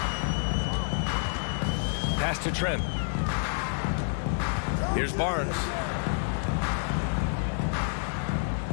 Pass to Trent. Here's Barnes.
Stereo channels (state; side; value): silent; right; digital silence